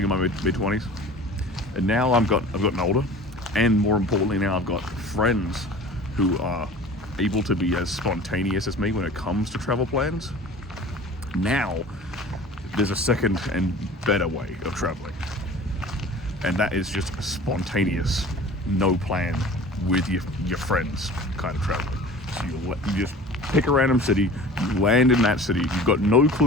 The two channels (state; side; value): normal; both; correlation 0.42